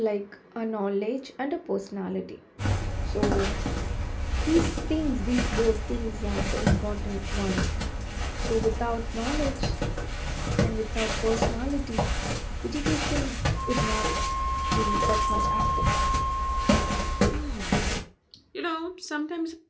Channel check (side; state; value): both; identical; correlation 1.00